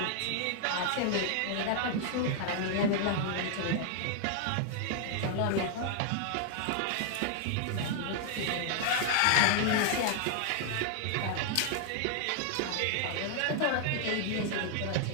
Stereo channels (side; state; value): both; different; correlation 0.00